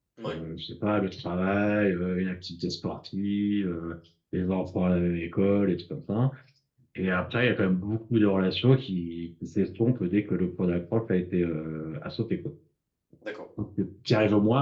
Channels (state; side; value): identical; both; correlation 1.00